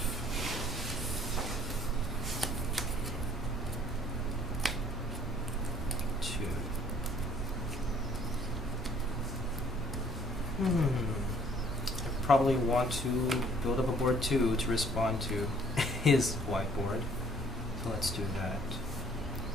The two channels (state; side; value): normal; both; correlation 0.58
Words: I probably want to build up a board too to respond to his whiteboard. So let's do that.